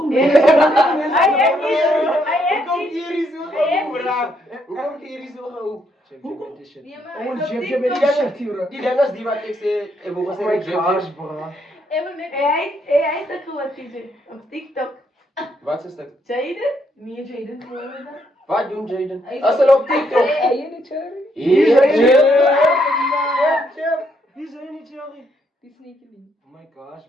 Hij jy? heeft Hoe kom niet. hier is so gehou, bro? Hoe kom hier is so gehou? Check met die shit. Nee, maar Ouwens, hij jib, is jib, op ek TikTok. shit hier, bro. Die ding is die wat ek sê, ek wou gesê met jib. bro. Hij is dat gewoon TJ. Op TikTok. Wat is dit? Jaden? Nee, Jaden. Hoe heet dat? Wat doen Jaden? Hij is As hulle op TikTok. Hij Hier is Jib. Wie is hy nie, Jerry? is niet geliefd. Oh my gosh,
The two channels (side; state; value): both; normal; correlation 0.74